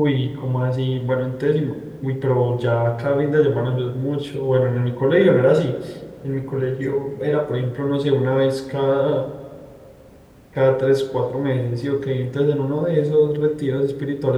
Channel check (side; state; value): both; identical; correlation 1.00